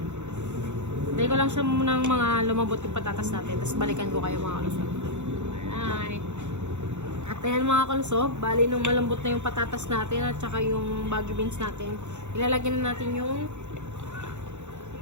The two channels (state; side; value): late; left; 0.83 ms